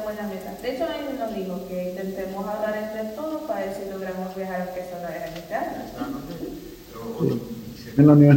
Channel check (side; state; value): both; identical; correlation 1.00